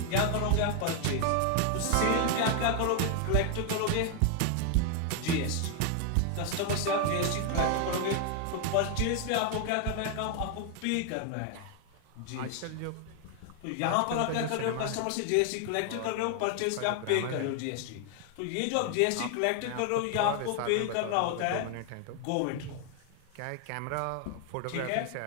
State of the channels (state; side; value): different; both; correlation 0.00